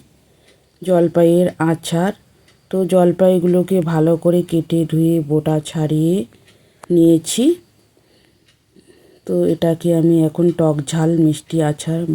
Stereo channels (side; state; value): both; identical; correlation 1.00